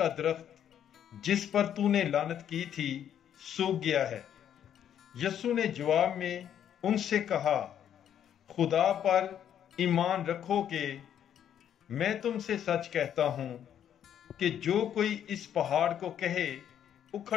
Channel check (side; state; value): right; quieter; 9.7 dB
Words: درخت جس پر تو نے لعنت کی تھی سوکھ گیا ہے۔ یسوع نے جواب میں ان سے کہا، خدا پر ایمان رکھو کہ میں تم سے سچ کہتا ہوں کہ جو کوئی اس پہاڑ کو کہے